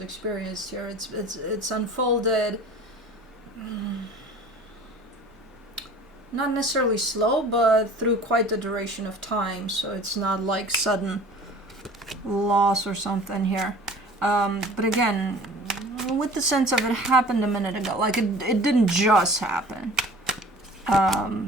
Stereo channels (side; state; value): both; normal; correlation 0.45